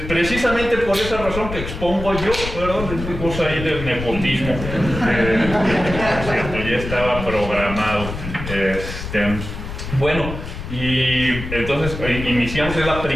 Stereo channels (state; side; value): noise; left; rumble, 8 dB below the sound